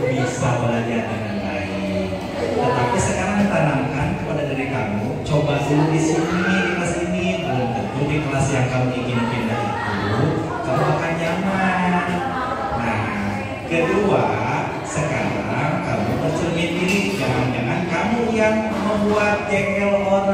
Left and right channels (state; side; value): identical; both; correlation 1.00